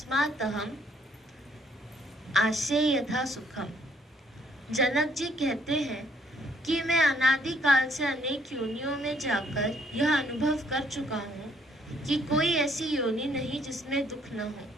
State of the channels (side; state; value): both; normal; correlation 0.66